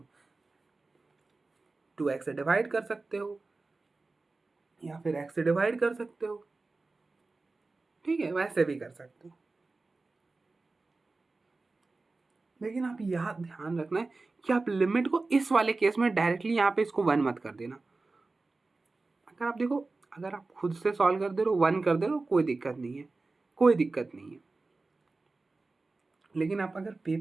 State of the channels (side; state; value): left; quieter; 3.6 dB